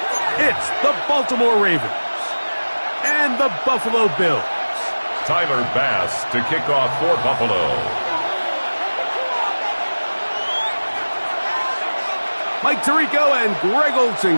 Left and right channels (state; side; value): inverted; both; correlation -1.00